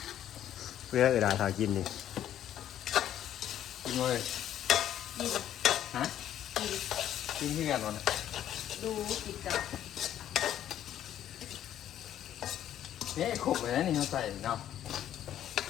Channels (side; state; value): right; quieter; 11.1 dB